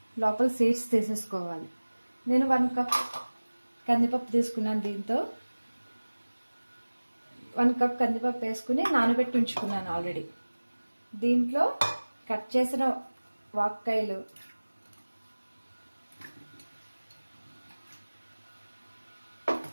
లోపల సీడ్స్ తీసేసుకోవాలి. నేను 1 కప్ కందిపప్పు తీసుకున్నాను. దీంతో 1 కప్ కందిపప్పు వేసుకుని నానబెట్టి ఉంచుకున్నాను ఆల్రెడీ. దీంట్లో కట్ చేసిన వాక్కాయలు,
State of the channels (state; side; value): inverted; both; correlation -1.00